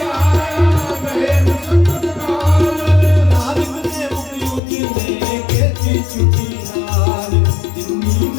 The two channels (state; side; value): drops out; right; at 4.6 s